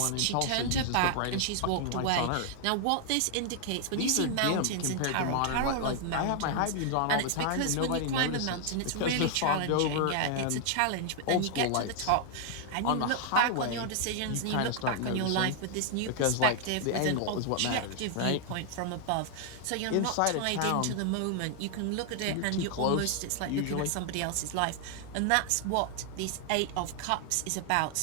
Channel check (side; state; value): both; different; correlation 0.00